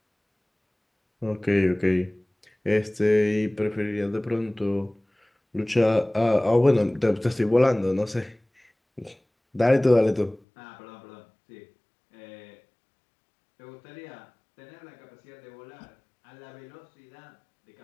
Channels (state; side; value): drops out; right; at 10.4 s